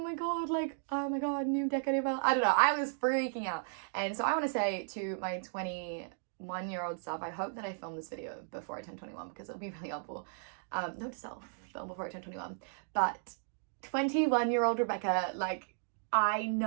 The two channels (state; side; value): silent; left; digital silence